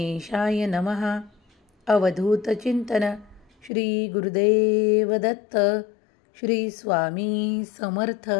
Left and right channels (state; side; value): drops out; right; at 3.7 s